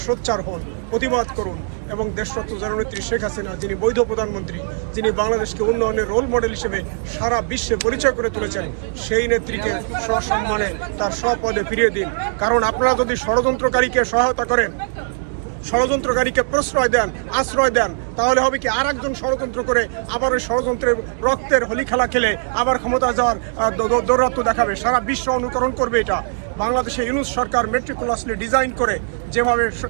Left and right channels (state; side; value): silent; left; digital silence